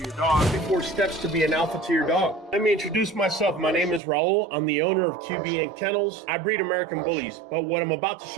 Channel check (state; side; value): drops out; left; at 4.0 s